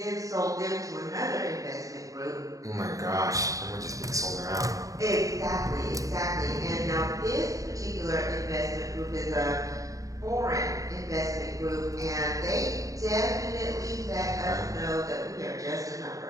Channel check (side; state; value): left; late; 0.16 ms